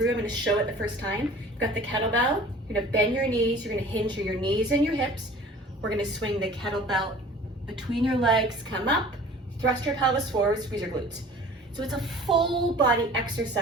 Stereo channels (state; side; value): normal; both; correlation 0.46